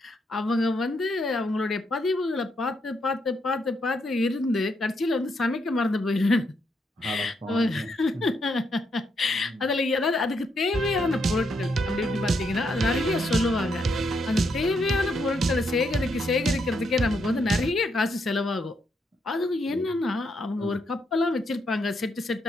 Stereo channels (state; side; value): normal; both; correlation 0.78